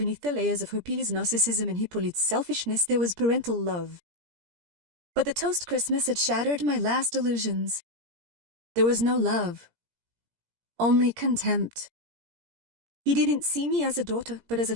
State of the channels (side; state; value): left; late; 17 ms